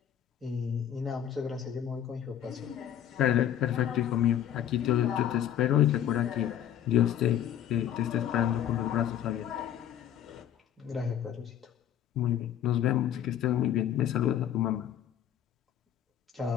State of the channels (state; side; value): quieter; right; 10.4 dB